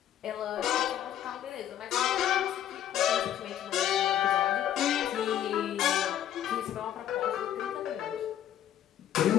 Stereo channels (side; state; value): right; quieter; 10.9 dB